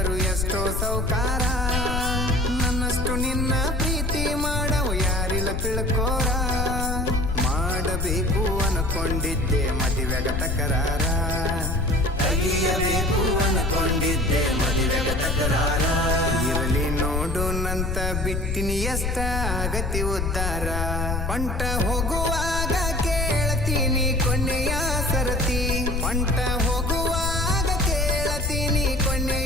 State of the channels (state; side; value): noise; left; rumble, 2 dB below the sound